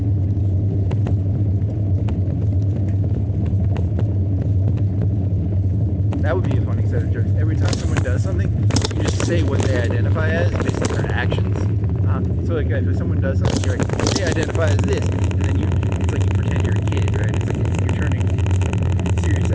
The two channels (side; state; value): both; identical; correlation 1.00